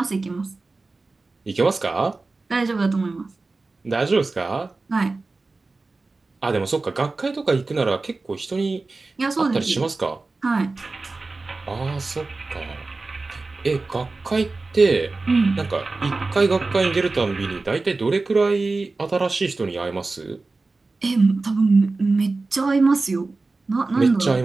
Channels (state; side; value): quieter; left; 3.6 dB